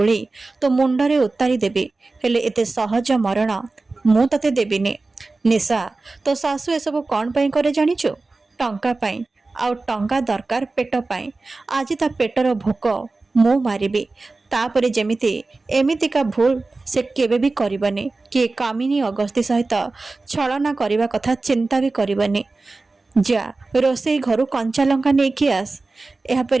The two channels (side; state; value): left; quieter; 3.5 dB